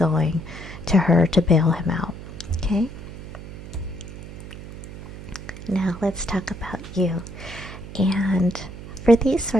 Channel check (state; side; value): noise; right; hum, 12 dB below the sound